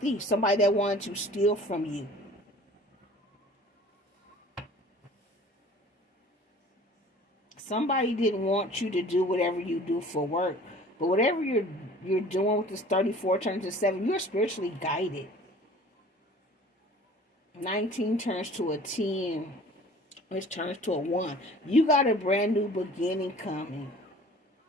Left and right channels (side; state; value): both; normal; correlation 0.47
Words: Somebody that wanted to steal from you. Somebody didn't want you to do whatever you do for work. But whatever you're doing with this 34 turns to 7, you're spiritually guided. 19 turns to a 10. Which turns to a 1. You got a brand new beginning coming